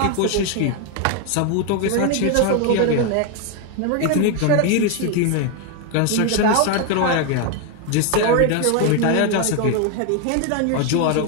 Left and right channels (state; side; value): different; both; correlation 0.01